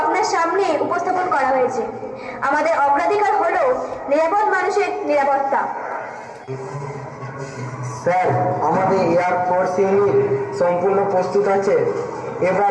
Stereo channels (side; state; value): both; identical; correlation 1.00